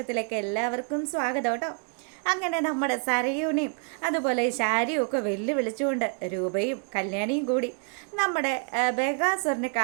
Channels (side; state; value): left; quieter; 39.4 dB